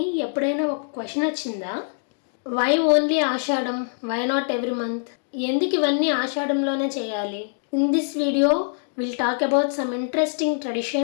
ఎప్పుడైనా ఒక క్వశ్చన్ వచ్చిందా? Why only Ashadham? Why not every month? ఎందుకు ఇవన్నీ ఆషాఢంలోనే చేయాలి? In this video will talk about some interesting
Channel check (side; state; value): right; silent; digital silence